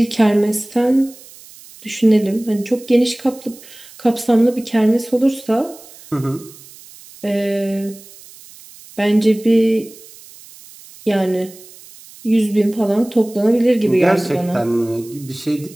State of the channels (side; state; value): right; noise; hiss, 21 dB below the sound